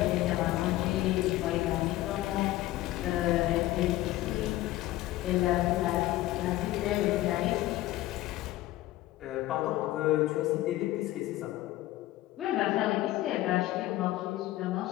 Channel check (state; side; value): quieter; right; 16.2 dB